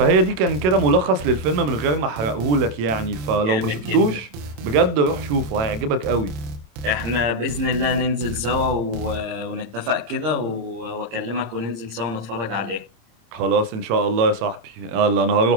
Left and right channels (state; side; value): late; left; 27 ms